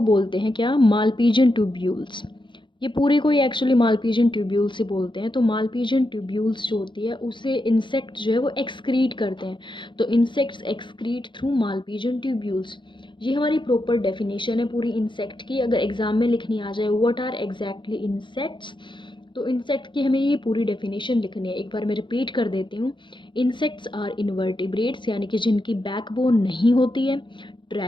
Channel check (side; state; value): right; late; 0.23 ms